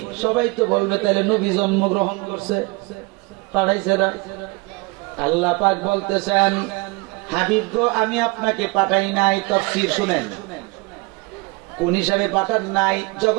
সবাই তো বলবে তাহলে নবী জন্মগ্রহণ করছে, পাঠাইছে না। আল্লাহ পাক বলতেছেন হাবিব গো আমি আপনাকে পাঠাই নাই। তাফসীর শুনেন কোন হিসাবে পাঠান নাই।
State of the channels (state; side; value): quieter; left; 27.0 dB